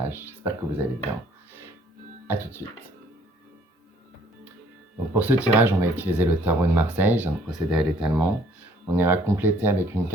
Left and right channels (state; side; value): normal; both; correlation 0.61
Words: J'espère que vous allez bien. A tout de suite. Donc pour ce tirage, on va utiliser le tarot de Marseille. Je viens de procéder à l'étalement. On ira compléter avec une